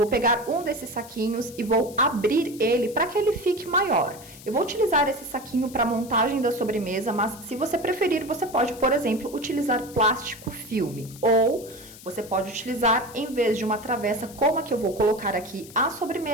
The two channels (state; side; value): noise; left; hiss, 18 dB below the sound